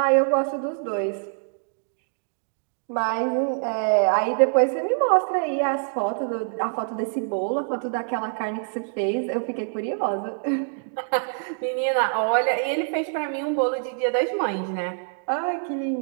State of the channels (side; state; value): left; silent; digital silence